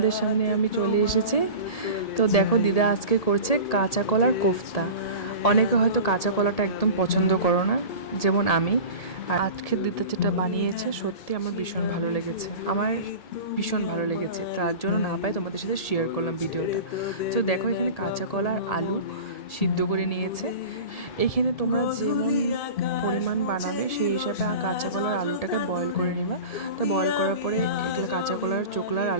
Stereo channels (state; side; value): late; right; 1.8 ms